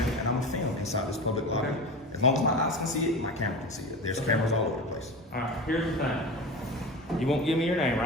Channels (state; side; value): normal; both; correlation 0.29